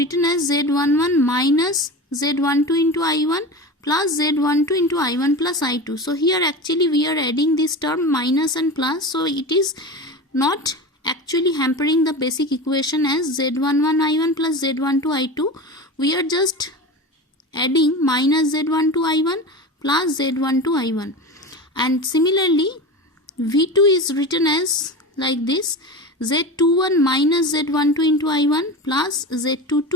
as Z11 minus Z12 into I1 plus Z12 into I1 plus I2. So here actually we are adding this term minus and plus. So it is not actually hampering the basic equation as Z11 I1 plus Z12 I2. We are just adding minus Z12 I1 plus Z12 I1. And similarly, V2 is written as like this: Z21 minus Z12 into I1 plus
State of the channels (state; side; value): normal; both; correlation 0.28